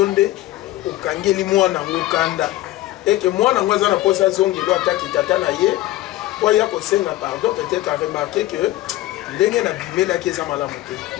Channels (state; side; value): quieter; right; 16.1 dB